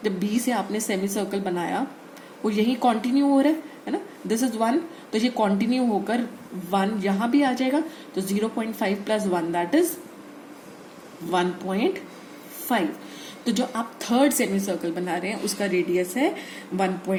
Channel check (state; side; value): identical; both; correlation 1.00